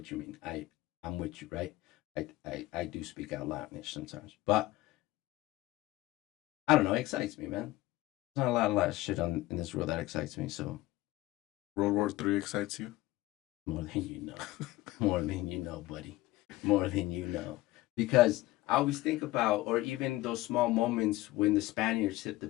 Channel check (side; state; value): right; quieter; 17.9 dB